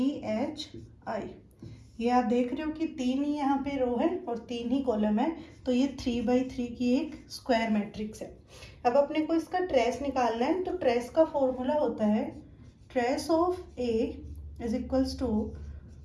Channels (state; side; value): identical; both; correlation 1.00